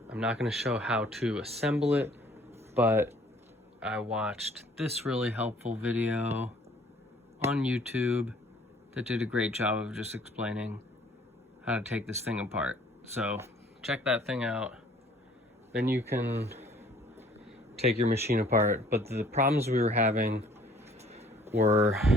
not going to show how to assemble it, but I watched this really helpful video on YouTube that did a great job of just explaining how to take this thing apart. So check that thing out. Then you can take your machine apart. But the problems we were having were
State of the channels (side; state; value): both; normal; correlation 0.57